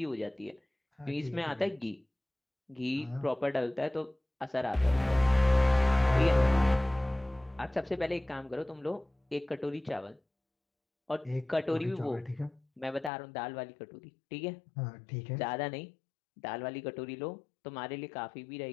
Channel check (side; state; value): right; drops out; at 13.1 s